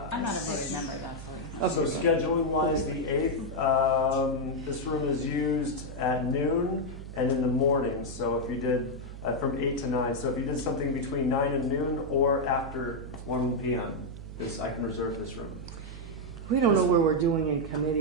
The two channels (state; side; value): noise; right; hum, 11 dB below the sound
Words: I'm not a voting member, that's So scheduling wise, the 8th, this room is used at noon and in the morning. So if you did from 8 to 9, so if you did something between 9 and noon or after 1 p.m., I can reserve this room. We don't know where we're doing in